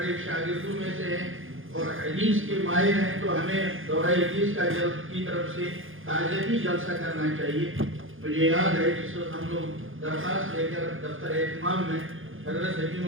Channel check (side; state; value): left; late; 0.59 ms